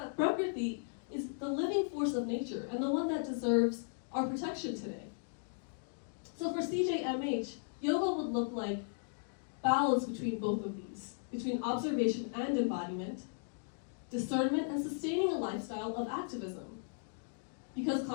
Prakriti is the living force of nature and the one that deserves our protection today. So for CJMH, yoga would look like balance between both of these, between observation and embodiment, discernment and sustaining a lifestyle of activism, because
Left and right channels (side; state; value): right; silent; digital silence